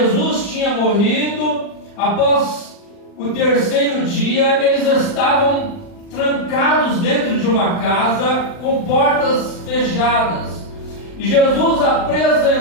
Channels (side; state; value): right; late; 40 ms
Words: tinha morrido, após o terceiro dia, eles estavam trancados dentro de uma casa com portas fechadas. E Jesus